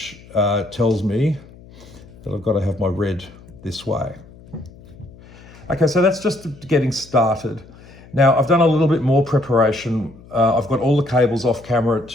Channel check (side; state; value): left; noise; hum, 22 dB below the sound